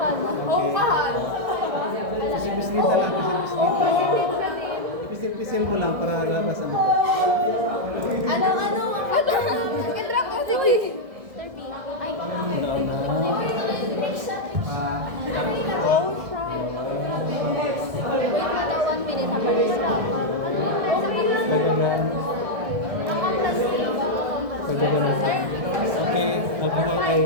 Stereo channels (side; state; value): left; late; 1.6 ms